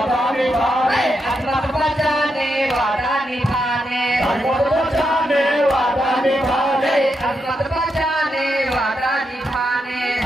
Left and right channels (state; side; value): normal; both; correlation 0.84